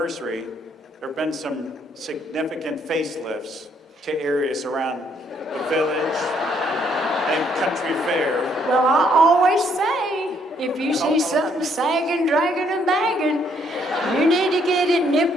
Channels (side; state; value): both; normal; correlation 0.69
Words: There have been some significant facelifts to areas around the village and country fair. Well, I always say, if you see something sagging, dragging, and bagging, you need to get it